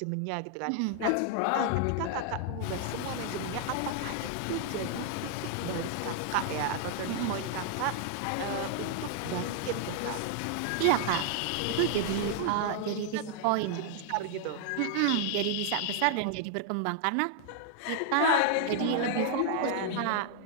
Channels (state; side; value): different; both; correlation 0.00